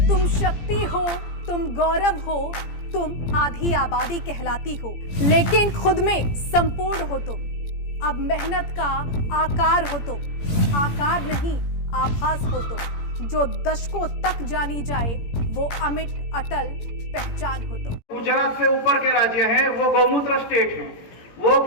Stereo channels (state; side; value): late; right; 17 ms